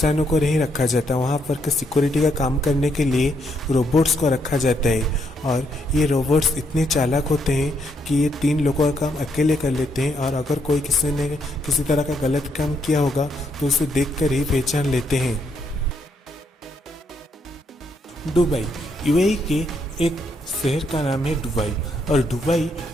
को नहीं रखा जाता, वहाँ पर के सिक्योरिटी का काम करने के लिए रोबोट्स को रखा जाता है। और ये रोबोट्स इतने चालाक होते हैं कि ये 3 लोगों का काम अकेले कर लेते हैं और अगर कोई किसी ने किसी तरह का गलत काम किया होगा तो उसे देख कर ही पहचान लेते हैं। दुबई UAE के एक शहर का नाम है दुबई। और दुबई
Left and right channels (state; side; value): normal; both; correlation 0.75